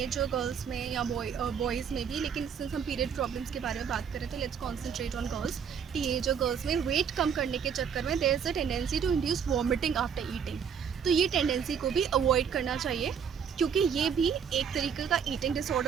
गर्ल्स में या बॉयज़ में भी, लेकिन सिंस हम पीरियड प्रॉब्लम्स के बारे में बात करें तो let's concentrate on girls. Teenager girls में वेट कम करने के चक्कर में there is a tendency to induce vomiting after eating. तो ये टेंडेंसी को भी अवॉइड करना चाहिए, क्योंकि ये भी एक तरीके का ईटिंग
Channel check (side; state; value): left; quieter; 7.3 dB